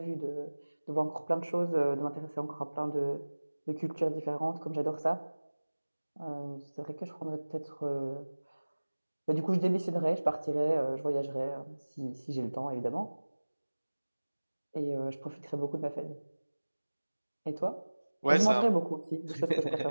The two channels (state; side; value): inverted; both; correlation -1.00